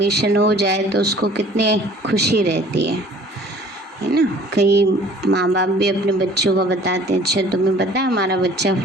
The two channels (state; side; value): normal; both; correlation 0.51